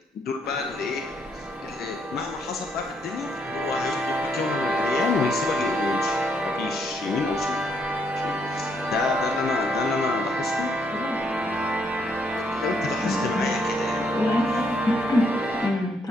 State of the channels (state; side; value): normal; both; correlation 0.73